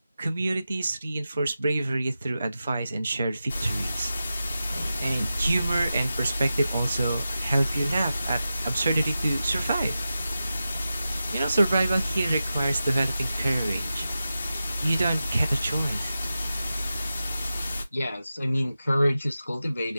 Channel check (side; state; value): both; inverted; correlation -0.92